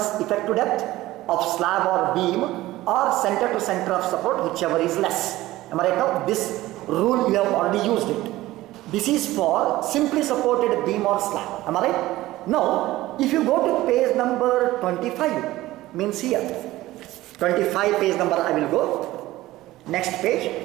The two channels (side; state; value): left; quieter; 16.8 dB